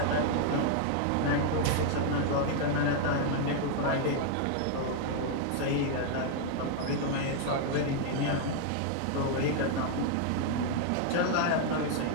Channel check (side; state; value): both; different; correlation 0.00